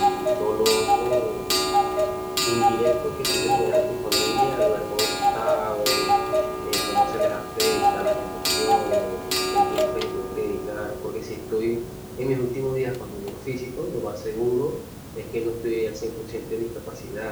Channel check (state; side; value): identical; both; correlation 1.00